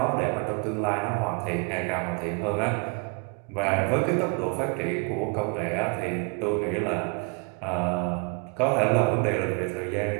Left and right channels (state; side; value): quieter; left; 34.0 dB